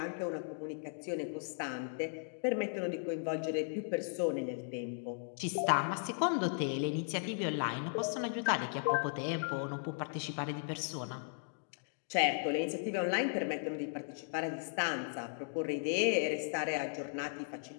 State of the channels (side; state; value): right; silent; digital silence